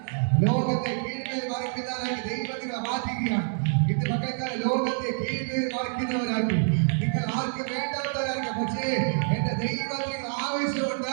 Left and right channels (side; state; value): left; silent; digital silence